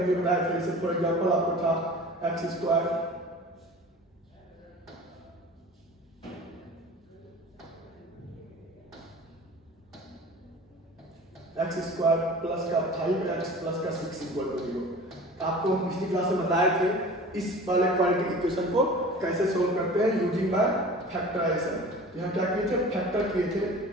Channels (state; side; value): normal; both; correlation 0.40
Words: लिए बताया था। जैसे फॉर एग्जांपल आपको था x square x square plus का 5x प्लस का 6 इक्वल टू 0। आपको हम पिछली क्लास में बताए थे इस वाले क्वाड्रेटिक इक्वेशन को कैसे सोल्व करते हैं यूजिंग बाय फैक्टराइजेशन। यहाँ क्या किए थे, फैक्टर किए थे।